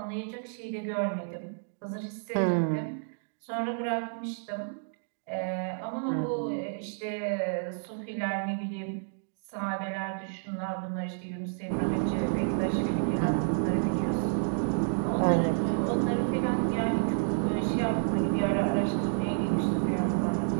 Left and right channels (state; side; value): silent; left; digital silence